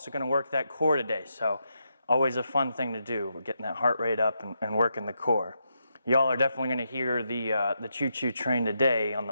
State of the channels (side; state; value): both; inverted; correlation -0.83